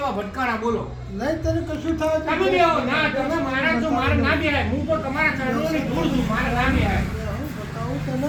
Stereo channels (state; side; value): identical; both; correlation 1.00